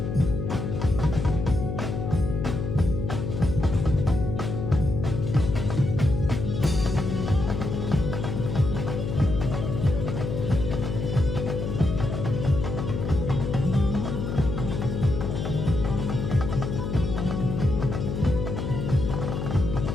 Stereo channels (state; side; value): noise; left; hum, 3 dB below the sound